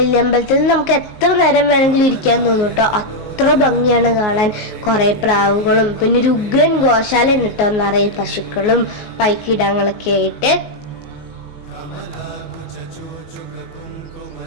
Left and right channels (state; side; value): late; right; 19 ms